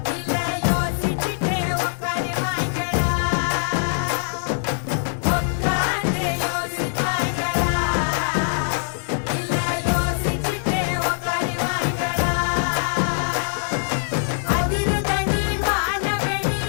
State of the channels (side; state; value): right; silent; digital silence